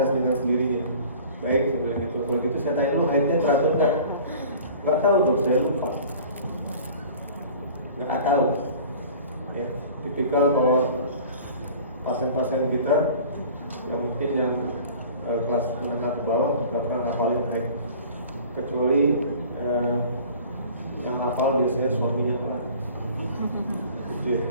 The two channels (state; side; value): inverted; both; correlation -0.45